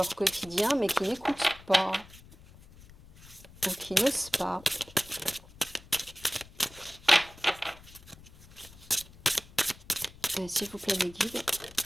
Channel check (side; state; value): left; noise; rumble, 21 dB below the sound